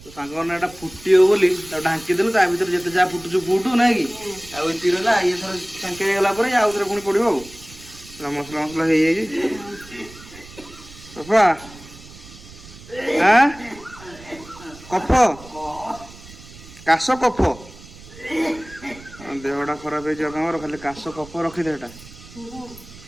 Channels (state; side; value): noise; right; rumble, 19 dB below the sound